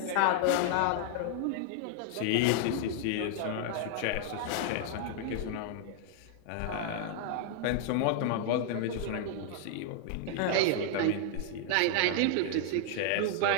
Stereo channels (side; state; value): both; different; correlation 0.00